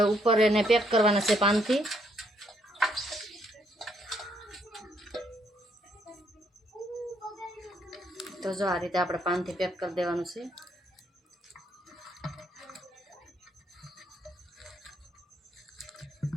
ઉપર એને પેક કરવાના છે પાનથી. તો જો આ રીતે આપણે પાનથી પેક કરી દેવાનું છે.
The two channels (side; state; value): both; normal; correlation 0.71